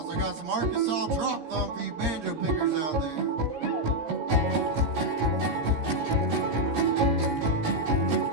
like I got some Arkansas drop thumb for you banjo pickers out there.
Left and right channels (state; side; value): late; left; 17 ms